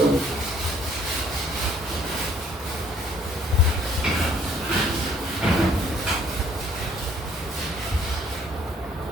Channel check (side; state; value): both; normal; correlation 0.60